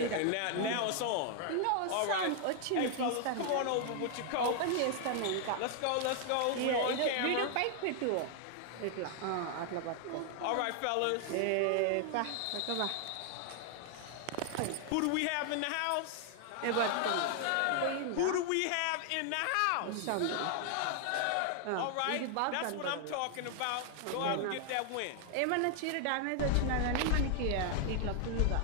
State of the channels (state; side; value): different; both; correlation 0.00